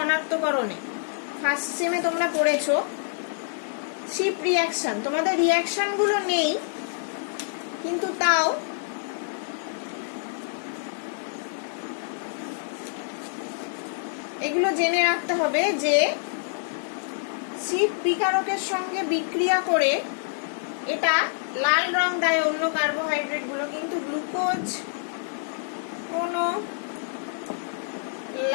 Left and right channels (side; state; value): right; silent; 60 dB below the other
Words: ফার্স্ট সেমে তোমরা পড়েছো শিপ রিঅ্যাকশন। তোমাদের রিঅ্যাকশন গুলো নেই, কিন্তু তাও এগুলো জেনে রাখতে হবে যে শিপ বিকারকের সঙ্গে বিক্রিয়া করে এটা লাল রং দেয় অন্য কার্বোহাইড্রেট গুলো, কিন্তু গ্লুকোজ কোনো